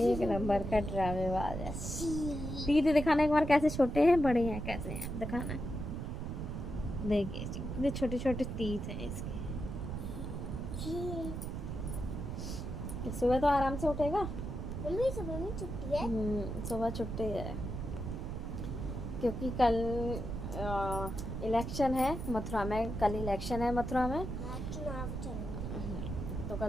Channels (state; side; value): noise; right; rumble, 5 dB below the sound